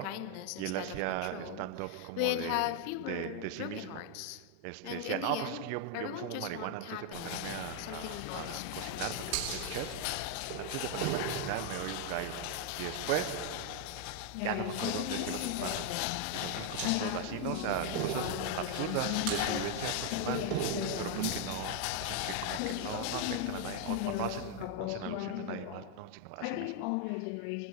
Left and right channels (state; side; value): different; both; correlation 0.01